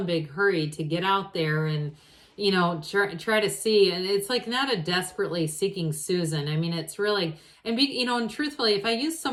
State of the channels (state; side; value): identical; both; correlation 1.00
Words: big hurry to get out there and, you know, try to see. And it's like not a desperately seeking Susan. I mean, it's really, and you know, and truthfully, if I use